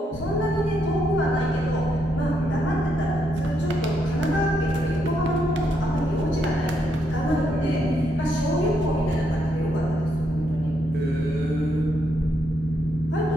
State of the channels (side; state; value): both; normal; correlation 0.77